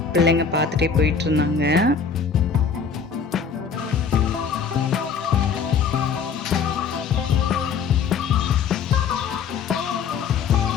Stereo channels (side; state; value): right; quieter; 6.2 dB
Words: பிள்ளைங்க பார்த்துட்டே போயிட்டு இருந்தாங்க.